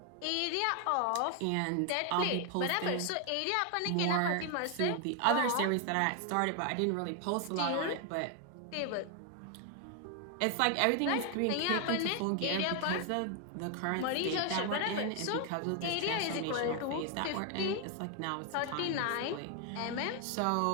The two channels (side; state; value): both; different; correlation 0.01